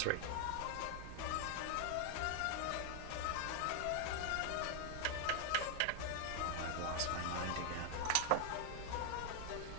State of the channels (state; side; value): different; both; correlation 0.00